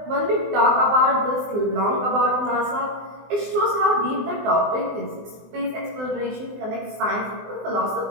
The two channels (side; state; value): left; late; 20 ms